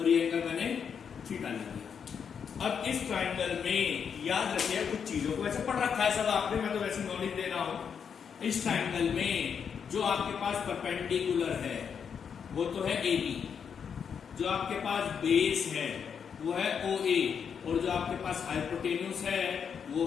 ये एंगल मैंने थीटा ले दिया। अब इस ट्राइंगल में याद रखिए कुछ चीजों को, वैसे पढ़ रखा है सब आपने, मैं तो वैसे नॉलेज दे रहा हूं। इस ट्राइंगल में जो आपके पास परपेंडिकुलर है वो तो है AB, जो आपके पास बेस है वो है OA, और जो आपके पास हाइपोटेन्यूस है वो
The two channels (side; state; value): right; quieter; 7.1 dB